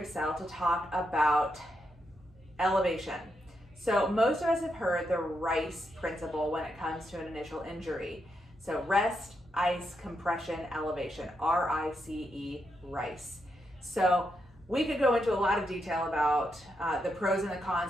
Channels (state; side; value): normal; both; correlation 0.82